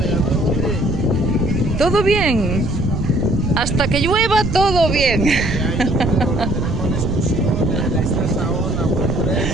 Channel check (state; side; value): noise; right; rumble, 3 dB below the sound